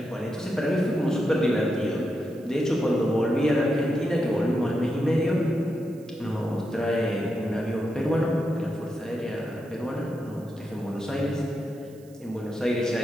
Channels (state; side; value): noise; right; hiss, 28 dB below the sound